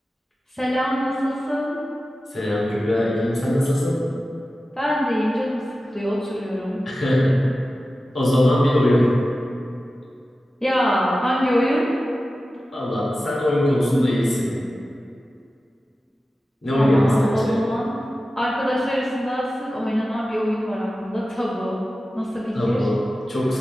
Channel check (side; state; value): both; normal; correlation 0.94